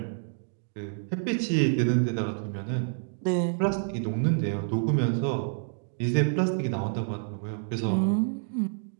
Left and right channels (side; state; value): left; silent; digital silence